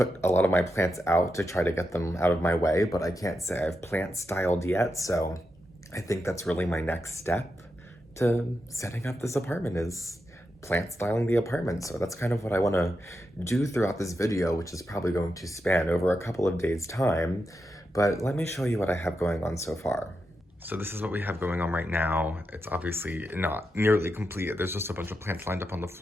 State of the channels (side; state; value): both; normal; correlation 0.86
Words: a lot of my plants out to try to get them out of my way, but I can't say I've plant styled yet, so I think that's really my next step to setting up this apartment is plant styling the apartment. So that's kind of what I want to do throughout this video, which is probably going to span over a couple of days' time, but let me show you what I have going on so far. So this is what we have going on right now. It's obviously not nearly complete. There's just a bunch of plants lined up on the